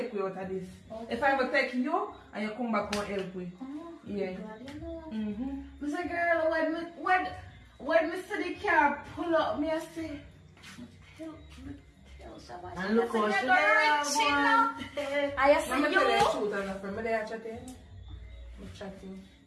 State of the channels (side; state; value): both; identical; correlation 1.00